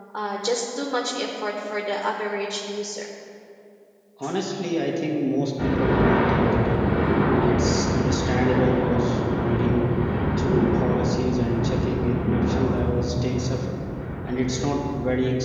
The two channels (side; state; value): both; identical; correlation 1.00